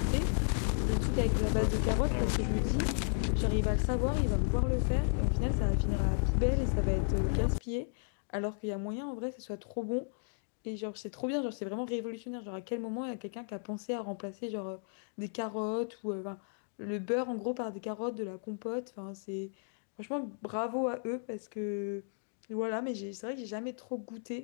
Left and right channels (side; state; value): right; silent; digital silence